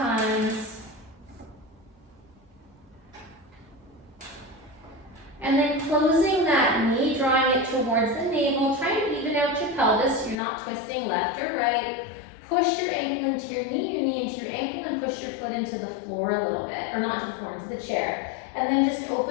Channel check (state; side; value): drops out; right; at 10.4 s